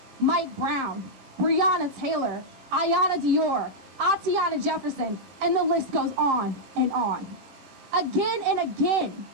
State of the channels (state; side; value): late; left; 21 ms